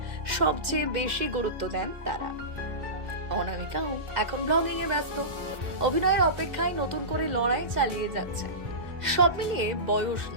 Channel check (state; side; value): late; left; 2.0 ms